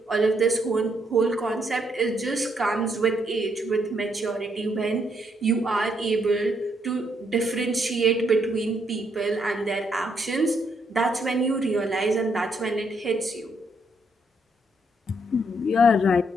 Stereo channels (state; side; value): normal; both; correlation 0.74